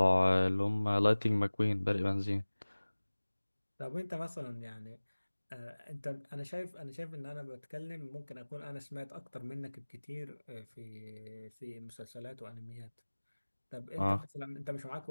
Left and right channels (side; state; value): both; inverted; correlation -1.00